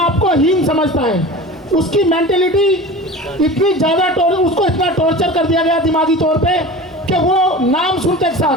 को हीन समझता है। उसकी मेंटेलिटी इतनी ज़्यादा उसको इतना टॉर्चर कर दिया गया दिमागी तौर पे कि वो नाम सुनते के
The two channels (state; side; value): normal; both; correlation 0.34